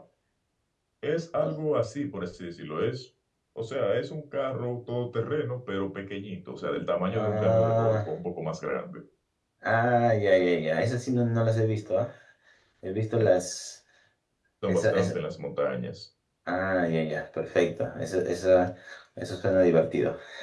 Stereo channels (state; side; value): identical; both; correlation 1.00